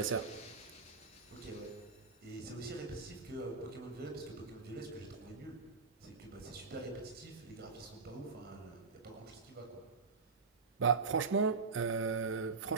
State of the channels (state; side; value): quieter; left; 4.6 dB